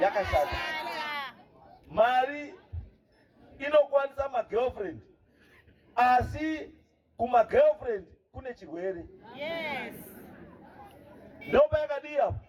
yakashata. Mari inokwanisa magirlfriend asi kumagirlfriend kune chirwere. Ndopa yakadii apo.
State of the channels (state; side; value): identical; both; correlation 1.00